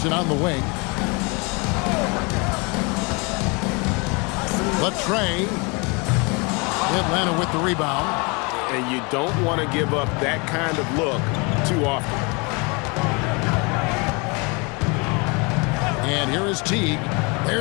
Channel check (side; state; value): right; quieter; 30.0 dB